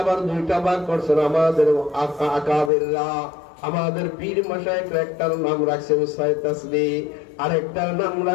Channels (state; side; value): drops out; right; at 2.7 s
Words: আবার দুইটা ভাগ করছেন আমাদের আকাবেররা, আমাদের পীর মাশায়েখরা। একটার নাম রাখছেন ৬ তাসবিহ, আরেকটার নাম